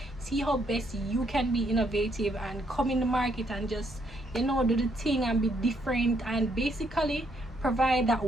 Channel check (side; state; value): both; normal; correlation 0.72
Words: See how best you can be innovative and come in the market and just, you know, do the thing and be different, and basically provide that